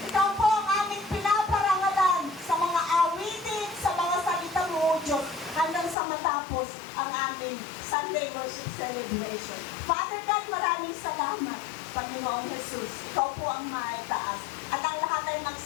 Ikaw po ang aming pinaparangalan sa mga awitin, sa mga salita mo, O Diyos, hanggang sa matapos ang aming Sunday worship celebration. Father God, maraming salamat, Panginoon Jesus. Ikaw po ang maitaas. At ang lahat ay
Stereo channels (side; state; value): right; drops out; at 6.0 s